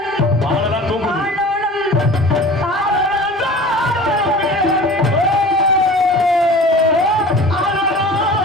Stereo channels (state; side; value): normal; both; correlation 0.40